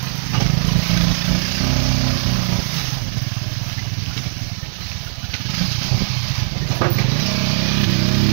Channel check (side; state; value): left; silent; 67 dB below the other